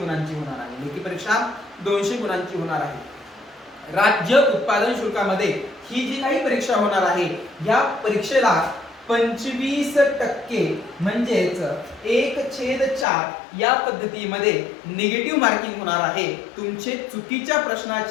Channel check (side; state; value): right; drops out; at 13.1 s